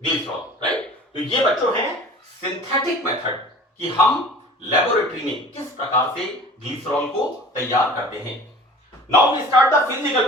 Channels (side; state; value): both; normal; correlation 0.44